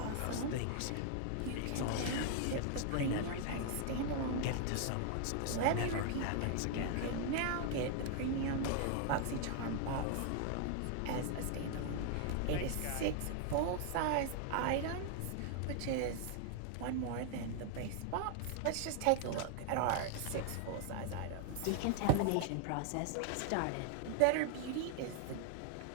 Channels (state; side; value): different; both; correlation 0.00